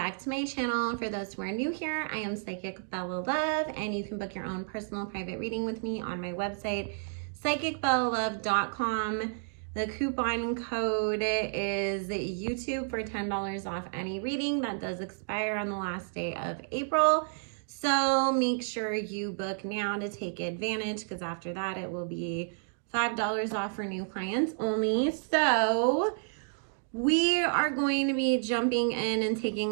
to my channel. For those who are new here, I am Psychic Bella Love, and you can book your own personal private reading with me on my website, psychicbellalove.com. The coupon code is YouTube for $10 off any reading. That does expire on the last day of April. So make sure you book now to take advantage, because after that it will be $5 off for new clients only. So we are going to be jumping in and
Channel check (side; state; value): left; silent; digital silence